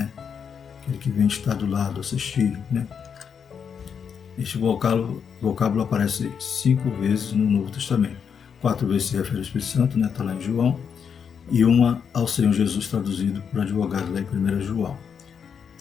Aquele que vem estar do lado, assistir, né? Este vocábulo aparece 5 vezes no Novo Testamento. 4 vezes se refere ao Espírito Santo, né? Está lá em João, e uma ao Senhor Jesus traduzido por advogado lá em 1 João.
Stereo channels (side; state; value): right; quieter; 7.0 dB